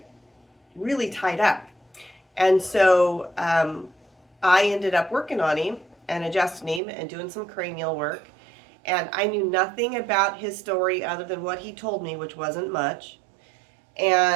really tied up. And so I ended up working on him and adjusting him and doing some cranial work. And I knew nothing about his story other than what he told me, which wasn't much.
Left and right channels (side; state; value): left; drops out; at 6.8 s